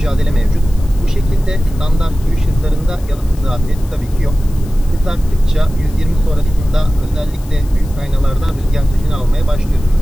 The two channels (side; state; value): left; noise; hiss, 23 dB below the sound